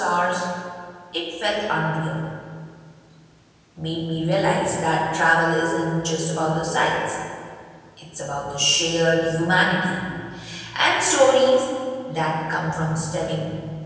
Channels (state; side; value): identical; both; correlation 1.00